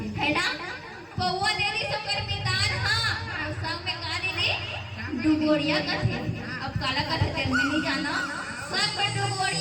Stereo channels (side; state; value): both; identical; correlation 1.00